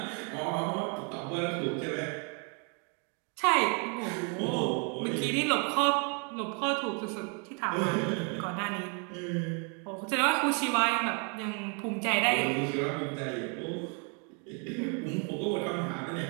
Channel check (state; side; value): quieter; left; 37.3 dB